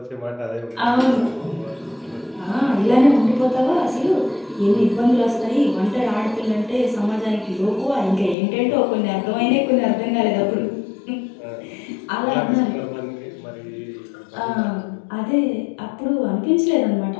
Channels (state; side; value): drops out; right; at 8.3 s